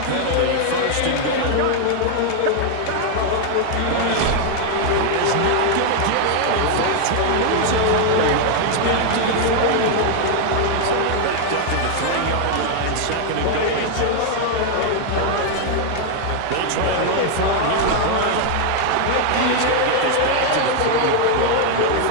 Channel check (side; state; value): both; different; correlation 0.00